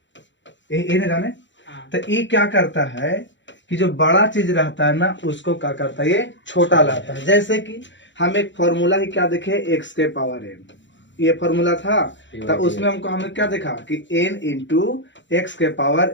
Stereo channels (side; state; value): right; late; 0.54 ms